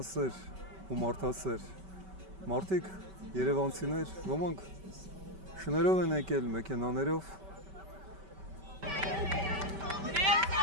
ու մարդասեր մարդիկ, երևանցիներ, ոմանք շներով են եկել, մեքենաներով։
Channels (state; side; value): late; left; 5.2 ms